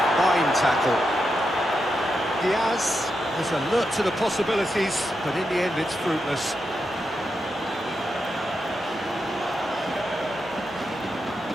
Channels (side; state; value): both; normal; correlation 0.86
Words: fine tackle. DIAZ has alert to the possibilities, but in the end it's fruitless.